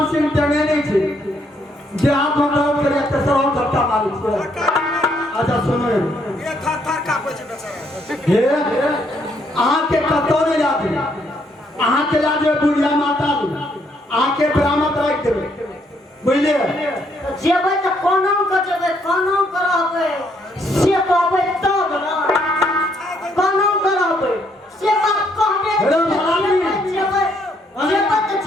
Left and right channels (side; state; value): both; normal; correlation 0.71